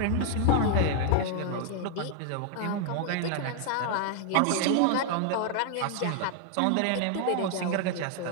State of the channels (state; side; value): different; both; correlation 0.00